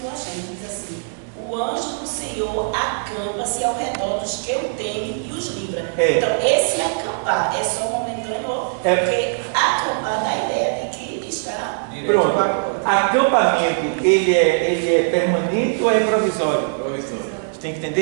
eu achei, diz assim: o anjo do Senhor acampa-se ao redor dos que o temem e os livra. Então esse acampar é só momentâneo, porque acampar dá a ideia de que está... Pronto, acampamento, ele é permanente ou é provisório? Você tem que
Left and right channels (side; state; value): left; silent; digital silence